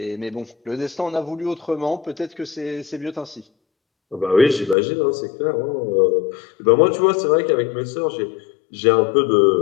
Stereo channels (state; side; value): drops out; right; at 4.8 s